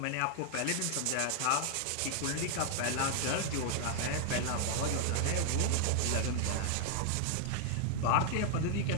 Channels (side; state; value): both; different; correlation 0.00